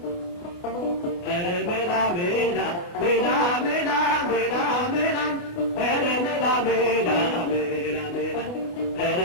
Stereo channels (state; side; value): late; right; 29 ms